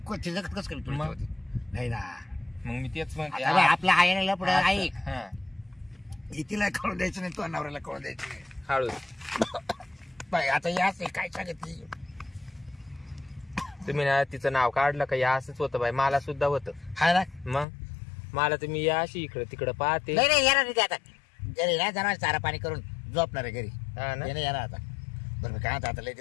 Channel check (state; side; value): drops out; right; at 17.7 s